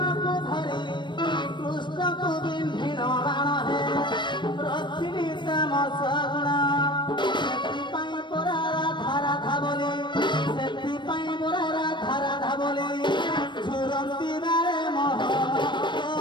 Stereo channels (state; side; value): late; right; 0.22 ms